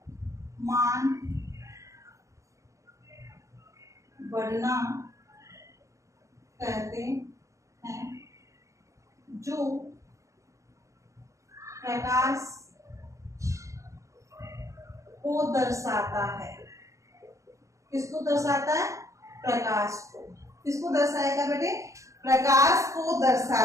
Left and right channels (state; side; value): late; left; 0.15 ms